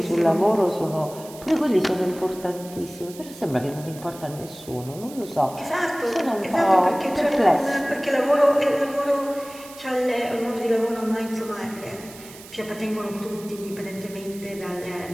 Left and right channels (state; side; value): noise; right; hiss, 18 dB below the sound